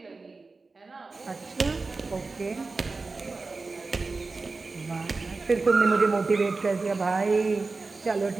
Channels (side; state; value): left; quieter; 3.9 dB